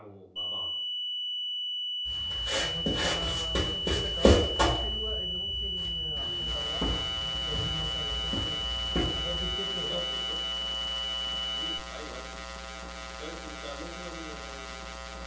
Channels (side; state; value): both; identical; correlation 1.00